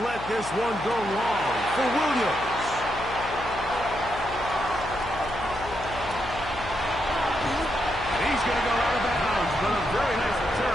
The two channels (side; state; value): left; noise; hum, 12 dB below the sound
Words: let this one go long for Williams. He's going to go out of bounds, but a very nice